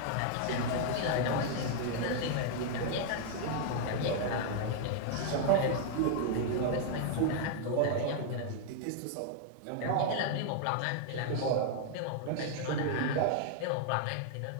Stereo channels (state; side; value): different; both; correlation -0.01